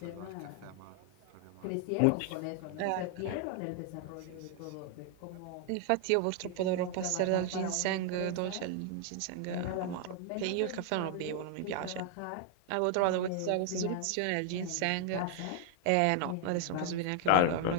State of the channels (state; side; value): different; both; correlation 0.00